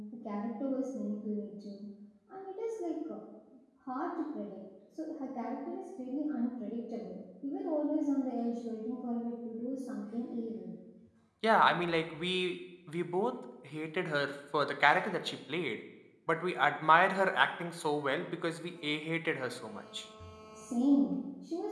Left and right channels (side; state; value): both; identical; correlation 1.00